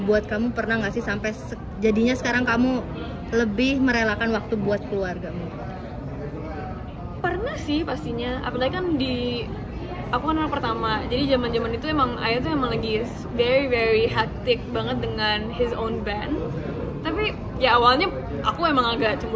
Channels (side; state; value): both; identical; correlation 1.00